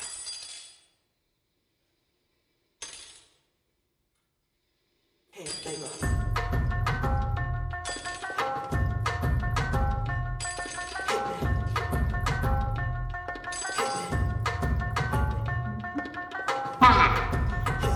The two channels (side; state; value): both; identical; correlation 1.00